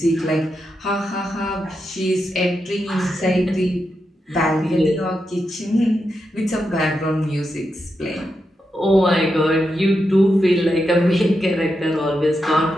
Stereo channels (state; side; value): normal; both; correlation 0.86